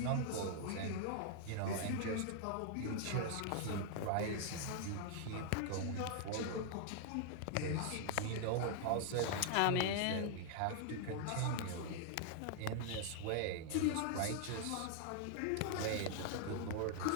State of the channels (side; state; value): both; different; correlation 0.00